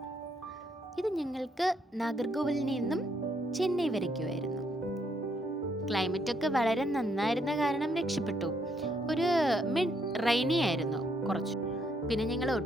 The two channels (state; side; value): normal; both; correlation 0.72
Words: ഇത് ഞങ്ങൾക്ക് നാഗർകോവിലിൽ നിന്നും ചെന്നൈ വരയ്ക്കുമായിരുന്നു. ക്ലൈമറ്റൊക്കെ വളരെ നന്നായിരുന്ന കാരണം രക്ഷപ്പെട്ടു. ഒരു മിഡ് റെയിനി ആയിരുന്നു കുറച്ച്. പിന്നെ ഞങ്ങൾ